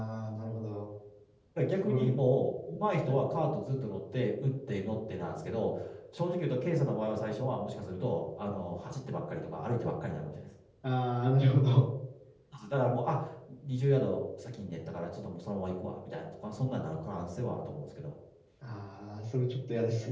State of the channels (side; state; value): both; identical; correlation 1.00